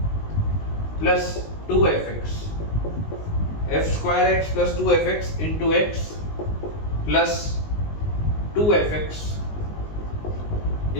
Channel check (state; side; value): late; right; 19 ms